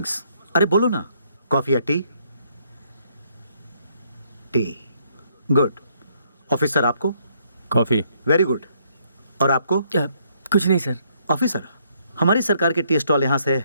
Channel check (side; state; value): both; inverted; correlation -0.70